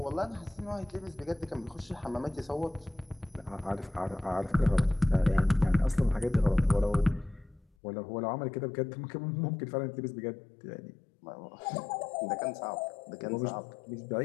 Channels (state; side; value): drops out; right; at 7.7 s